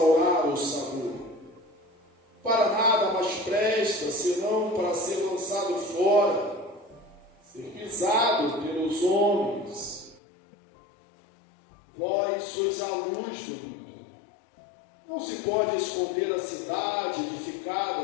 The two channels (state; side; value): drops out; right; at 10.2 s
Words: o sabor? Para nada mais presta, senão para ser lançado fora, ser pisado pelos homens. Vós sois a luz do mundo. Não se pode esconder a cidade